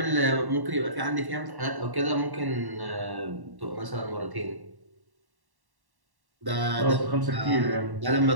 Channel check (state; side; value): late; left; 1.1 ms